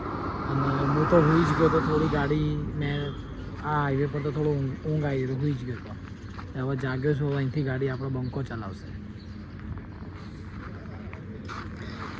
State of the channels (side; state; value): both; identical; correlation 1.00